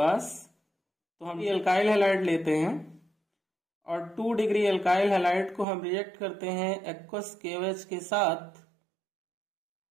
तो हम ये अल्काइल हैलाइड लेते हैं और 2 डिग्री अल्काइल हैलाइड को हम रिएक्ट करते हैं एक्वस KOH के साथ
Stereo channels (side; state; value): left; drops out; at 5.7 s